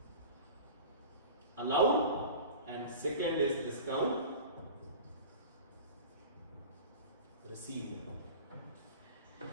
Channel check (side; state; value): both; inverted; correlation -0.36